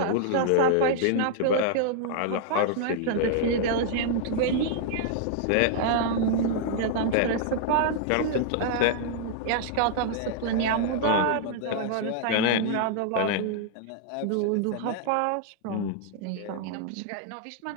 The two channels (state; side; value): different; both; correlation -0.01